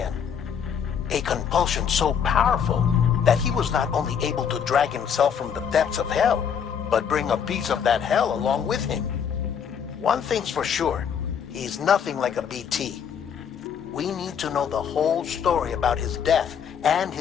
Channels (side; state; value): right; quieter; 7.6 dB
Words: A compulsion so powerful that he was not only able to drag himself from the depths of hell, but bring a piece of that hell along with him. One thing's for sure, he's nothing like a BT. We need to know the whole story about his death and